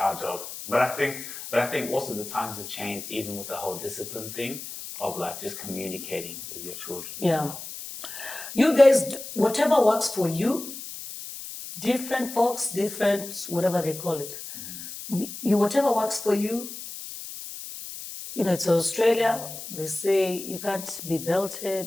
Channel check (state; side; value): noise; left; hiss, 10 dB below the sound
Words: job. But I think also the times have changed, even with the whole discipline thing of like just communicating with your children. Yeah. You guys, whatever works for you, different folks, different, whatever they call it. Whatever works for you, it's Australia, they say you can't be